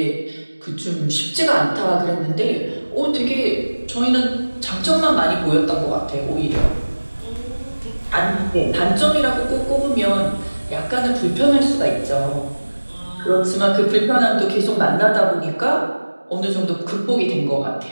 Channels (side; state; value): both; inverted; correlation -1.00